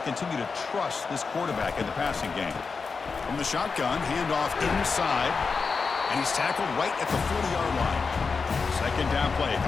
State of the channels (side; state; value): right; quieter; 4.9 dB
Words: continue to trust this quarterback in the passing game. From the shotgun, handoff inside, and he's tackled right at the 40-yard line. 2nd down play